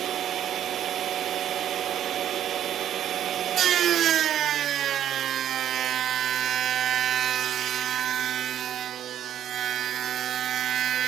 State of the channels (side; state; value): left; quieter; 10.6 dB